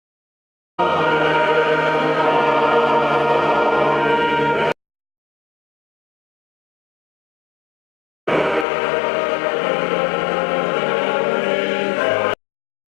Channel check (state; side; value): drops out; right; at 8.7 s